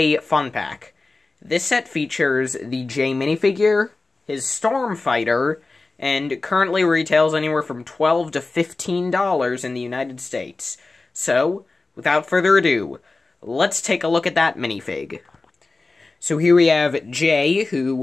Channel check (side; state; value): right; quieter; 3.5 dB